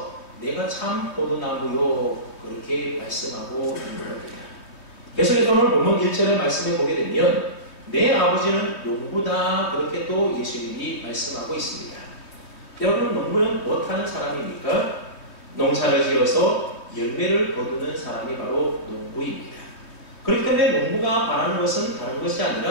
내가 참 포도나무요 그렇게 말씀하고 있는 겁니다. 그래서 오늘 본문 1절의 말씀에 보게 되면 내 아버지는 농부다 그렇게 또 예수님이 말씀하고 있습니다. 여러분, 농부는 무엇하는 사람입니까? 농사를 지어서 열매를 거두는 사람이 바로 농부입니다. 그렇기 때문에 농부가 바라는 것은 다른 것이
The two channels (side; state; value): right; late; 3.1 ms